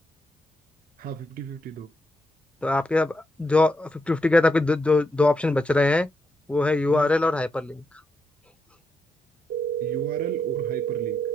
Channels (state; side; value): normal; both; correlation 0.82